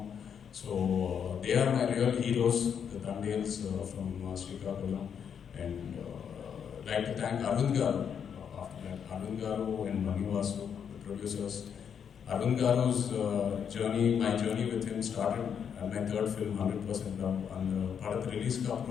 So they are my real heroes, the Tandels from Srikakulam. And like to thank Arvind Garu. After that, Arvind Garu and Manivasu, the producers. Arvind Garu's journey, my journey with him started at my third film, 100% Love. And படத்து ரிலீஸ்க்கு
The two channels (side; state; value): right; quieter; 7.7 dB